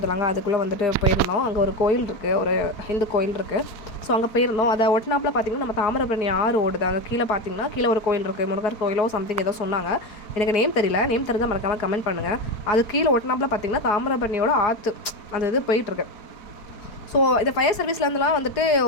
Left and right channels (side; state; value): right; late; 4.8 ms